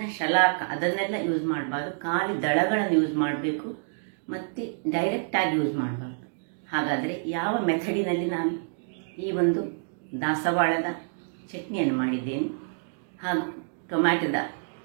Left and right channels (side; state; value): left; silent; digital silence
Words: ಶಲಾಕ ಅದನ್ನೆಲ್ಲ ಯೂಸ್ ಮಾಡಬಾರ್ದು, ಖಾಲಿ ದಳಗಳನ್ನು ಯೂಸ್ ಮಾಡಬೇಕು ಮತ್ತು ಡೈರೆಕ್ಟಾಗಿ ಯೂಸ್ ಮಾಡಬಾರ್ದು. ಹಾಗಾದರೆ ಯಾವ ಮೆಥಡಿನಲ್ಲಿ ನಾನು ಈ ಒಂದು ದಾಸವಾಳದ ಚಟ್ನಿಯನ್ನು ಮಾಡಿದ್ದೇನೆ ಹಾಗೂ ಟೊಮ್ಯಾಟೊದ